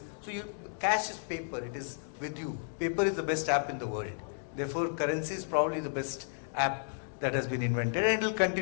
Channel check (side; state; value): right; silent; digital silence